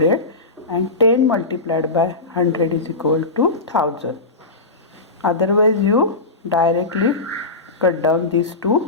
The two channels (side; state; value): right; quieter; 3.3 dB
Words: and 10 multiplied by 100 is equal to 1000. Otherwise you directly cut down these